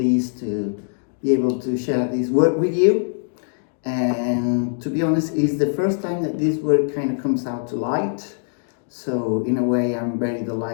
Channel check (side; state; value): right; silent; digital silence